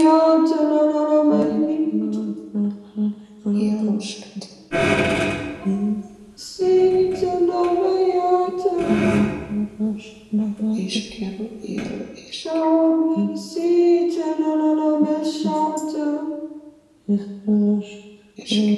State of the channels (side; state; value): both; identical; correlation 1.00